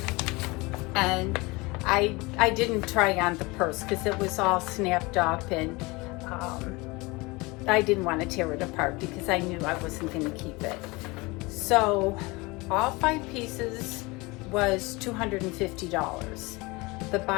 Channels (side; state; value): right; quieter; 24.4 dB